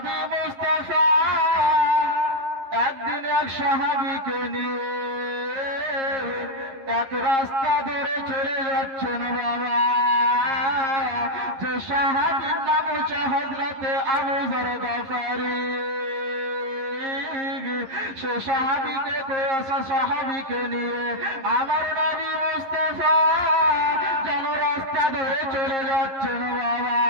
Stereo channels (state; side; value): late; left; 11 ms